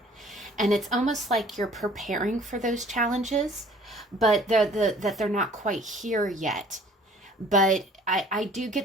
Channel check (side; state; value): both; normal; correlation 0.53